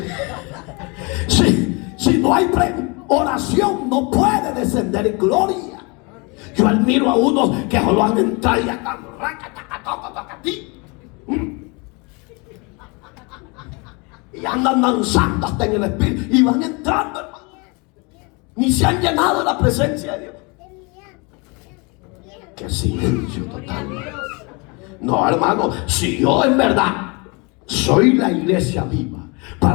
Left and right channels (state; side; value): quieter; right; 29.5 dB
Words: Si no hay oración no puede descender en gloria. Yo admiro a unos que solo han entrado y están y andan danzando hasta en el espíritu y van entrando, hermano. Ni se han llenado de la presencia de Dios. Qué silencio total. No, hermano, si yo en verdad soy la iglesia viva,